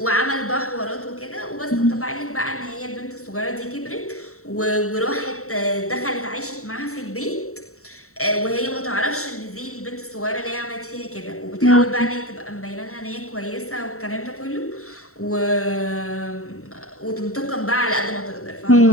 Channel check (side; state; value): right; late; 0.64 ms